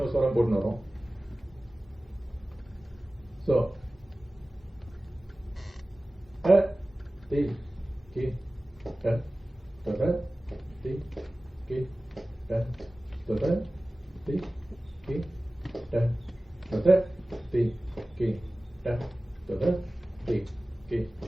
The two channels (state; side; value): normal; both; correlation 0.97